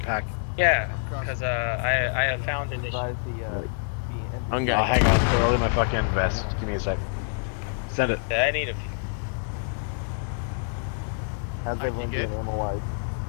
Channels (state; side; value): silent; right; digital silence